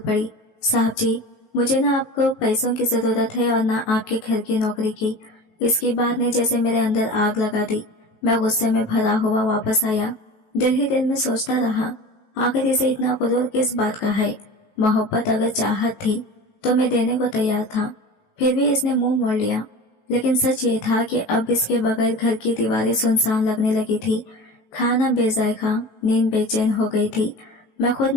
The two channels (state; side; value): late; right; 19 ms